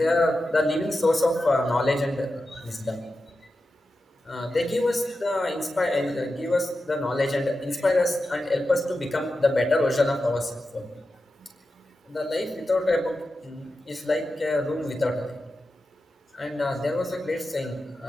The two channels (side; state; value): both; normal; correlation 0.91